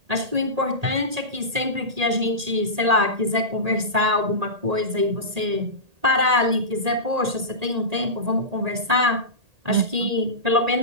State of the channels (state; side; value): late; left; 1.8 ms